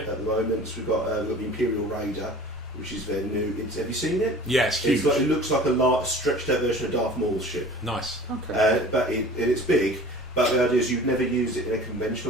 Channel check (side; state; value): both; normal; correlation 0.43